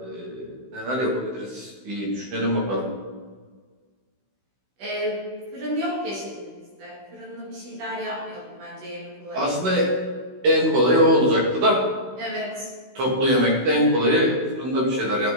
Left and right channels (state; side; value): late; left; 16 ms